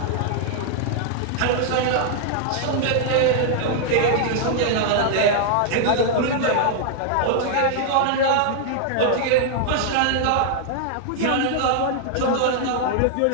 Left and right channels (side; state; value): both; different; correlation -0.01